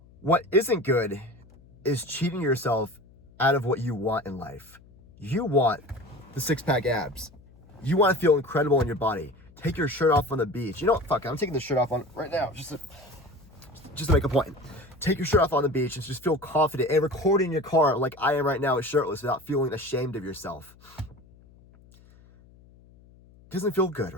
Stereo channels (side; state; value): left; noise; hum, 26 dB below the sound